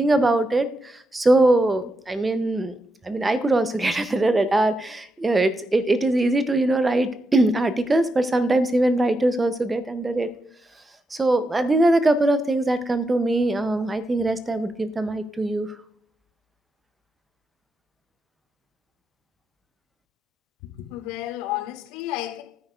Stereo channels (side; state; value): both; normal; correlation 0.85